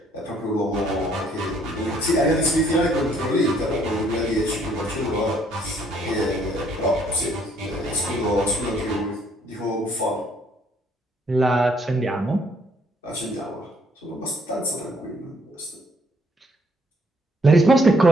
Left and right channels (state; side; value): normal; both; correlation 0.66